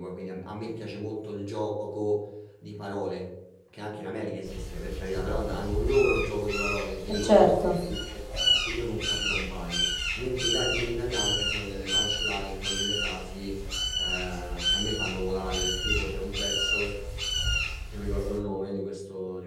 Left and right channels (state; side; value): identical; both; correlation 1.00